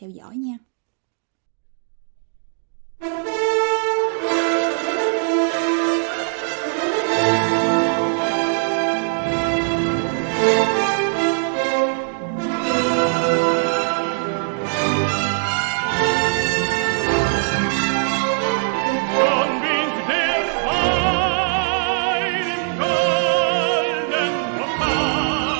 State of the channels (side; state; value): left; silent; 65 dB below the other